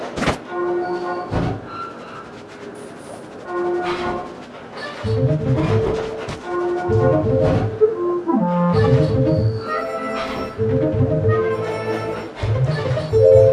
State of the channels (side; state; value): both; identical; correlation 1.00